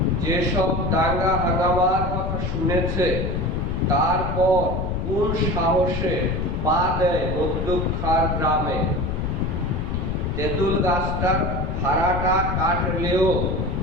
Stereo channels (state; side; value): noise; left; rumble, 2 dB below the sound